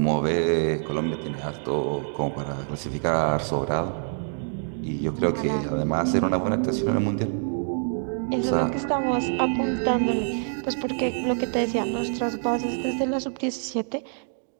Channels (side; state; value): left; silent; digital silence